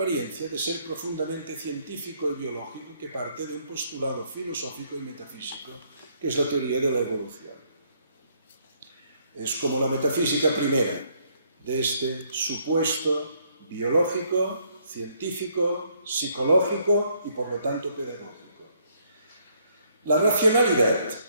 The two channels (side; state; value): both; inverted; correlation -0.68